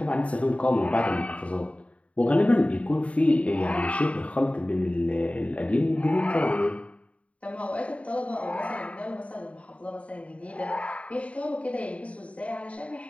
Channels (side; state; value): right; late; 0.064 ms